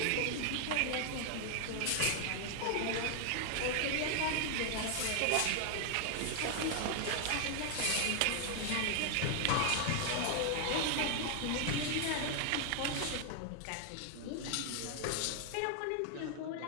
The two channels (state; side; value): different; both; correlation 0.00